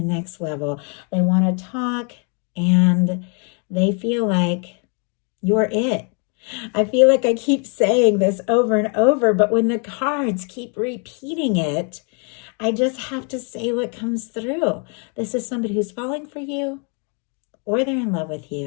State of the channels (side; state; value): right; quieter; 37.9 dB